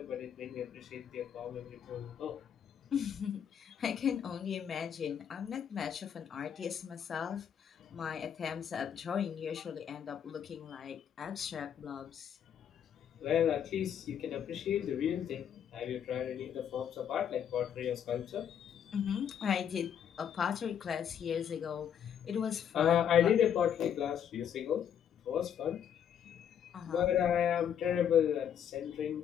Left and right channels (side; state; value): right; quieter; 8.8 dB